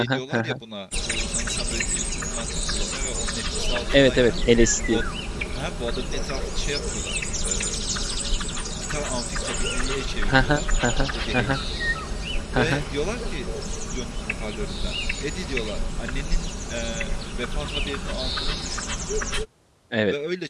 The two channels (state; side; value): identical; both; correlation 1.00